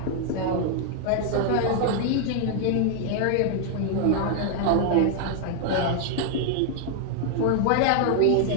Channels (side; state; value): both; different; correlation 0.00